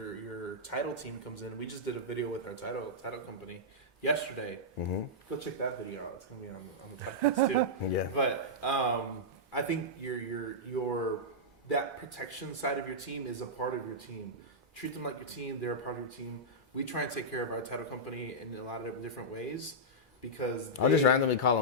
title team comes in. We just did a video with our title company yesterday. Mm-hmm. Go check that video out. It's gonna be on the podcast too. Yeah. But I think your that protection side of your team is a part of your team. Treat them like your team. They're a part of your team. We try and take care of our title company in a lot of different ways because I'll just randomly call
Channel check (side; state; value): both; normal; correlation -0.11